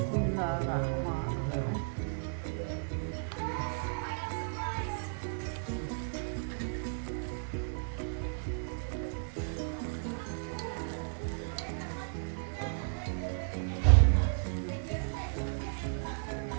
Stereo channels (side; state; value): left; silent; digital silence